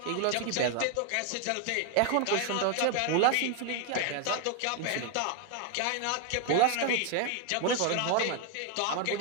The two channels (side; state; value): both; different; correlation 0.01